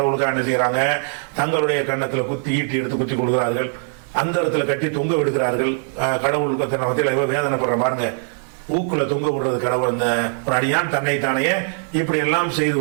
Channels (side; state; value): left; silent; 65 dB below the other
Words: என்ன செய்யறாங்க? தங்களுடைய கன்னத்துல ஈட்டி எடுத்து குத்தி கொடுக்கிறார்கள், அந்த இடத்துல கட்டி தொங்க விடுகிறார்கள். கடவுளுக்கு மத்தியில் வேதனைப்படுற பாருங்க, ஊக்குல தொங்க விடுறது கடவுள். அந்த ஒரு அடியான் தன்னைத்தானே இப்படி எல்லாம் செய்து